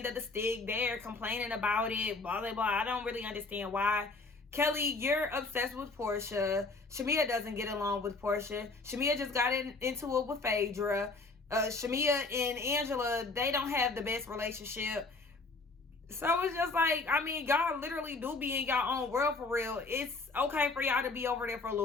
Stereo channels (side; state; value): right; quieter; 3.7 dB